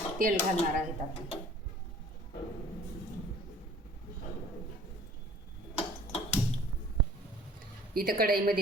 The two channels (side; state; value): both; normal; correlation 0.50